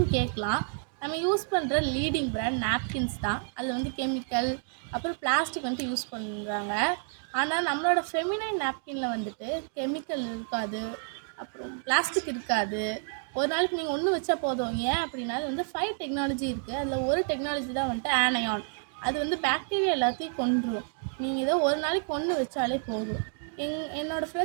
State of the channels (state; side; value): silent; left; 56 dB below the other